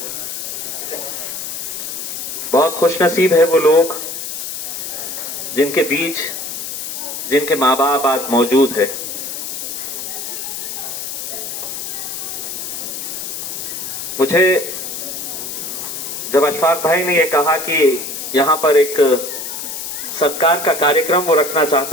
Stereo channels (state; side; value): noise; left; hiss, 6 dB below the sound